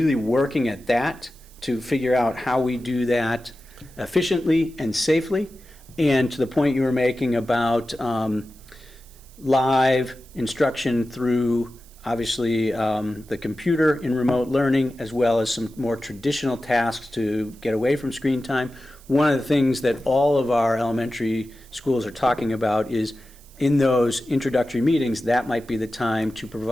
working at that to figure out how we do that efficiently and safely. And to the point you were making about live instruction through, obviously, the computer in remote learning, as well as some more traditional tasks to get away from screen time. One of the things that all of our elementary schools are talking about is in those introductory meetings, that might be the time to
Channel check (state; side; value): noise; right; hiss, 25 dB below the sound